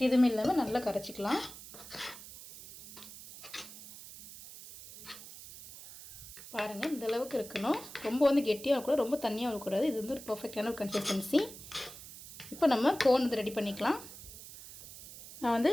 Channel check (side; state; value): right; noise; hiss, 15 dB below the sound